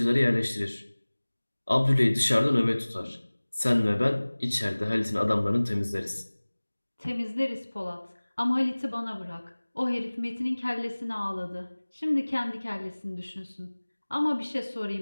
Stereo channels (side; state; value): both; inverted; correlation -1.00